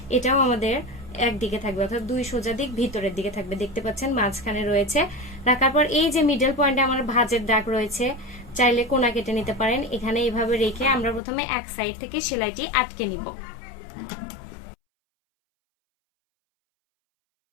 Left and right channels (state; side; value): drops out; right; at 11.2 s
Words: এটাও আমাদের একদিকে থাকবে, অর্থাৎ 2 সোজা দিক ভিতরের দিকে থাকবে। দেখতে পাচ্ছেন মাঝখানে রয়েছে। রাখার পর এই যে মিডল পয়েন্টে আমার ভাঁজের দাগ রয়েছে, চাইলে কোনা কেটে নিতে পারেন। এখানে এইভাবে রেখে আমরা প্রথমে এক সাইড থেকে সেলাইটি আটকে নিব।